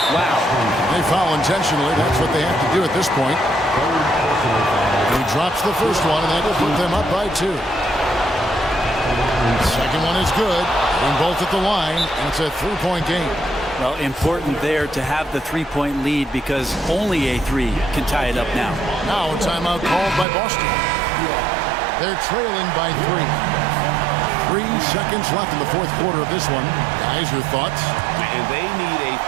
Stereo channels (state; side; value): drops out; left; at 20.2 s